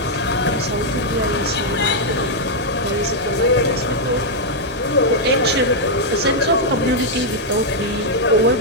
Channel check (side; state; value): both; normal; correlation -0.03